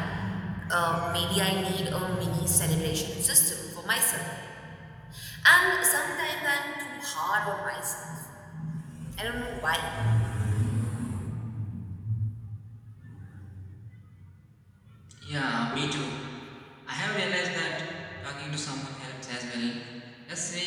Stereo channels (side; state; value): both; identical; correlation 1.00